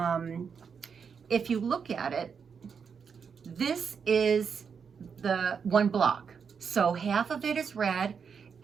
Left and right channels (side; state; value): left; quieter; 6.4 dB